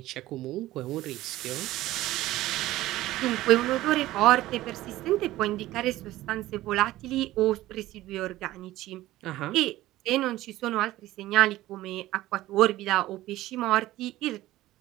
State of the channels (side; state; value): left; quieter; 16.2 dB